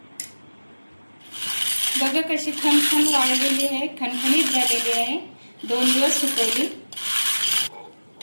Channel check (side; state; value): both; inverted; correlation -1.00